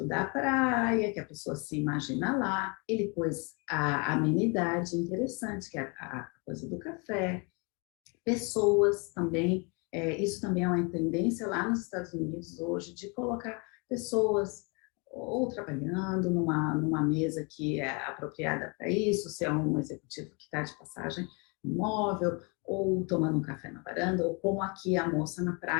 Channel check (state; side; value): quieter; right; 32.2 dB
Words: da praia, que a pessoa se imagina lá. Ele pôs a amenidade interessante, que é a coisa do café. Pessoas também, isso também é uma tendência lá nos Estados Unidos hoje, de colocar pessoas ou trabalhando numa mesa que é apropriada para isso, se é um executivo que está de passagem no imóvel, ou tomando um café na varanda, ou como aqui a moça na